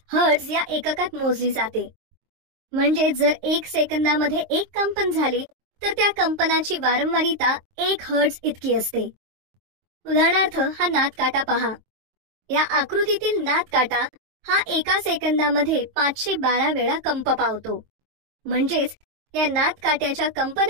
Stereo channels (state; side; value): late; left; 23 ms